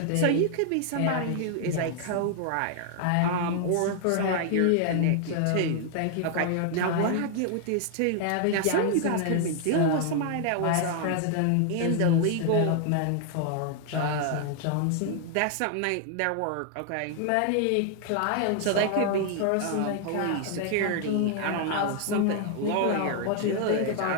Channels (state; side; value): different; both; correlation 0.00